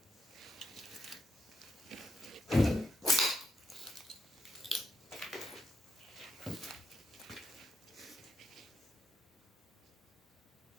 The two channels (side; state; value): both; normal; correlation 0.79